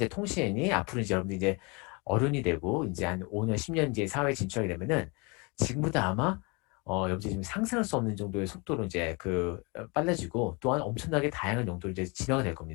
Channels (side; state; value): right; quieter; 29.7 dB